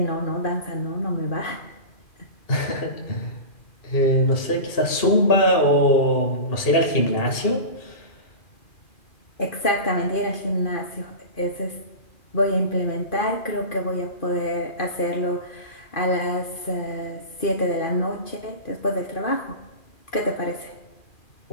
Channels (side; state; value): right; late; 2.4 ms